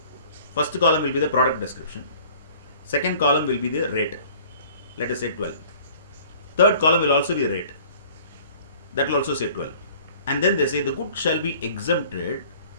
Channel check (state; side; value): inverted; both; correlation -0.50